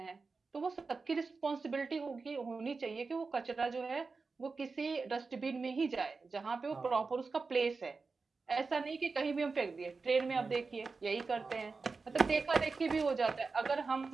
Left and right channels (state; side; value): quieter; left; 4.3 dB